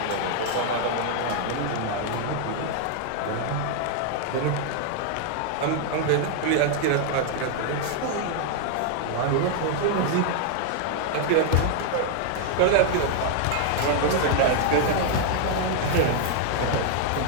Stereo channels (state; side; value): different; both; correlation 0.00